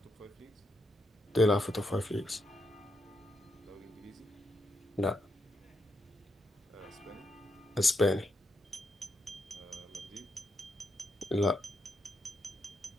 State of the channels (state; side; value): normal; both; correlation 0.81